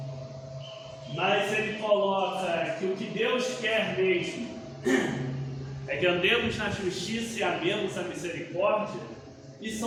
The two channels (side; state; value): both; identical; correlation 1.00